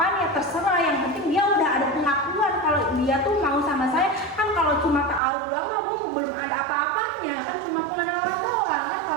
ya terserah, yang penting dia udah ada pengakuan kalau dia tuh mau sama saya. Kan kalau cuma taruh doang mah Bu, belum ada apa-apanya kan, cuma pengenalan doang kan.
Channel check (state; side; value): drops out; left; at 5.2 s